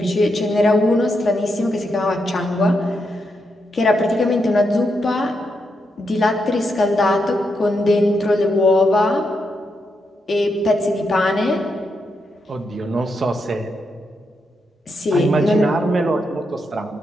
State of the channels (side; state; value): both; normal; correlation 0.83